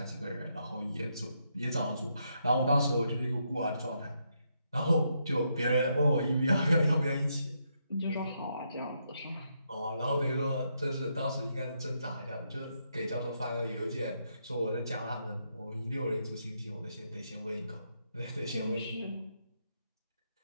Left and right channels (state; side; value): inverted; both; correlation -0.79